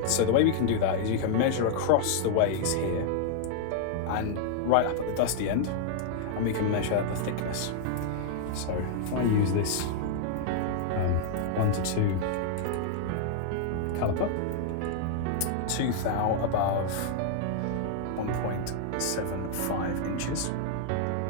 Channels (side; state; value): both; different; correlation -0.01